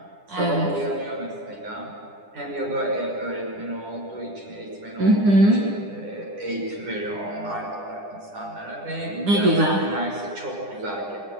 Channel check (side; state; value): left; late; 10 ms